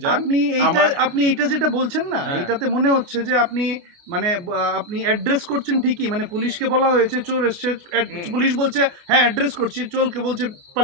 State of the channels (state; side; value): late; left; 29 ms